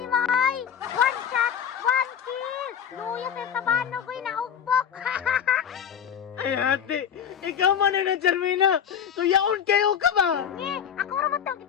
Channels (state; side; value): quieter; right; 8.3 dB